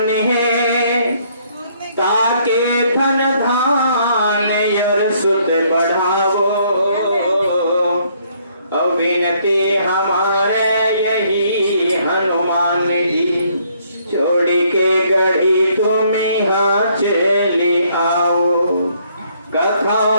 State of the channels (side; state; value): both; inverted; correlation -0.67